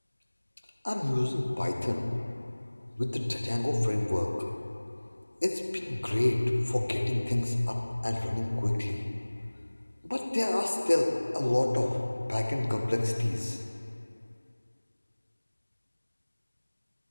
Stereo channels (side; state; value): both; inverted; correlation -1.00